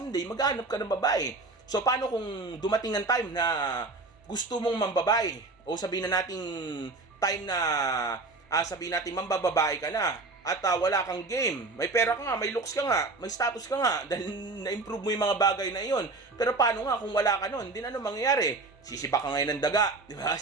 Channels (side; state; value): left; quieter; 3.5 dB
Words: maghanap ka ng babae. So paano kung dumating ng time na gusto mong mambabae o sabihin na nating time na sabihin natin mambababae ka na at wala kang game, may pera ka nga, may looks ka nga, may status ka nga dahil na-improve mo yung mga bagay na iyon. Pero paano nga kung wala ka nun? Hindi na ano mangyayari? Sisiba ka ngayon ng daga, di ba?